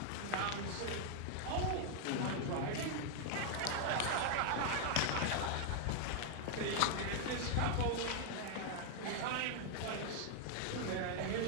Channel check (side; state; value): both; different; correlation 0.00